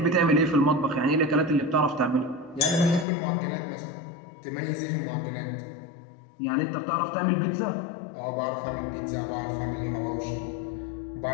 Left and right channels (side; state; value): right; drops out; at 3.1 s